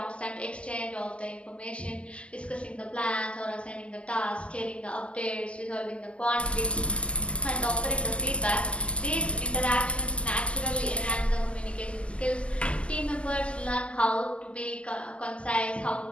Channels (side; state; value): right; late; 0.055 ms